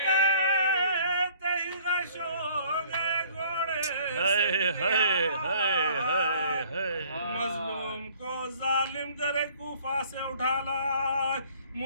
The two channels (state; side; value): inverted; both; correlation -0.56